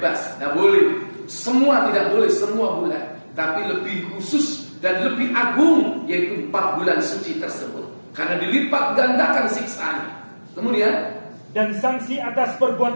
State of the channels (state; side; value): inverted; both; correlation -1.00